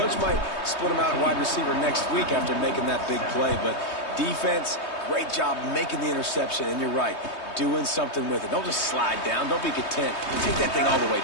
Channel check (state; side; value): late; right; 3.2 ms